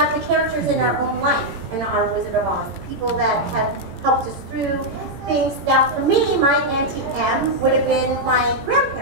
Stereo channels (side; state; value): left; late; 18 ms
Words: the characters in our own life, in our Wizard of Oz. People that have helped us through things. Now, for me, my Auntie M would have been my